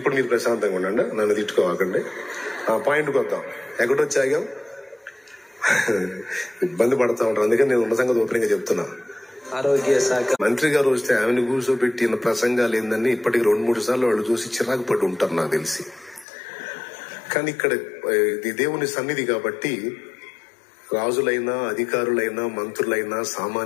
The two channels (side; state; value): right; drops out; at 16.2 s